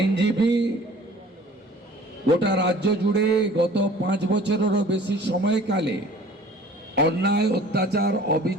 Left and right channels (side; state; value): both; normal; correlation 0.48